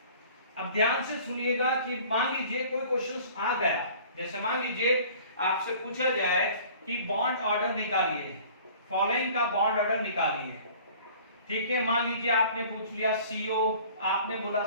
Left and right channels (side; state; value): both; inverted; correlation -0.49